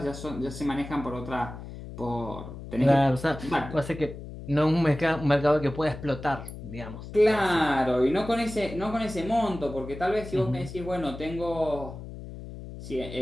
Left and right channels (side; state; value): left; noise; hum, 12 dB below the sound